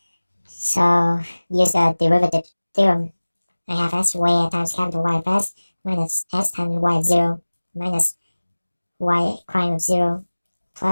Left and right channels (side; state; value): both; inverted; correlation -1.00